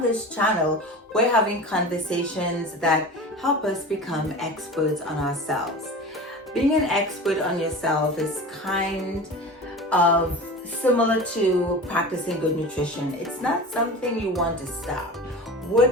this channel we're having conversations that help us become experts on ourselves. Being an expert on yourself is kind of similar to practicing good nutrition. It's not something you want to stop.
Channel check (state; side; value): normal; both; correlation 0.33